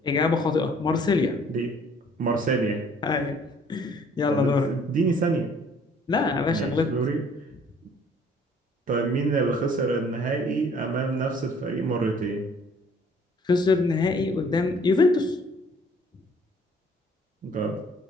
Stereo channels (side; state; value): both; normal; correlation 0.57